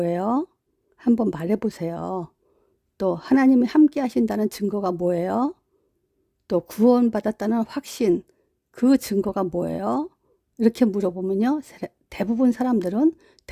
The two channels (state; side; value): identical; both; correlation 1.00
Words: 한번 말해보세요. 또 하나님이 함께 하신다는 증거가 뭐예요? 또 구원받았다는 확신, 그 증거가 뭐예요? 이렇게 물어보면요, 대부분 사람들은